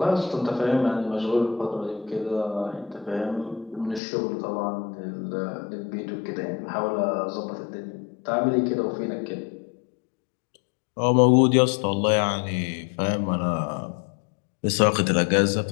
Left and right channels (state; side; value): drops out; right; at 4.0 s